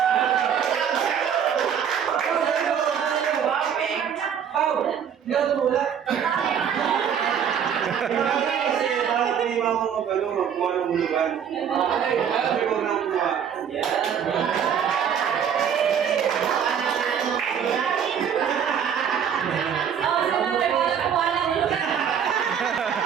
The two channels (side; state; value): left; quieter; 8.1 dB